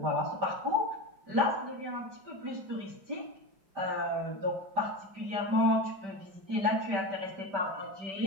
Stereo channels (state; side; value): late; left; 5.1 ms